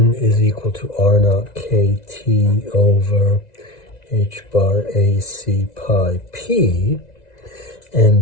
is equal to r naught kt over h bar a c pi p,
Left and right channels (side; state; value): right; late; 1.9 ms